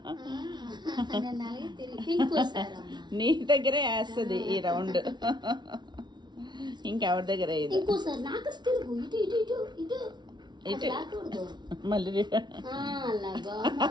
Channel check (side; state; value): left; late; 0.21 ms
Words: నీ దగ్గరే వేస్తుంది ఈ రౌండ్, ఇంకెవరి దగ్గర ఇది. ఇటు మళ్ళీ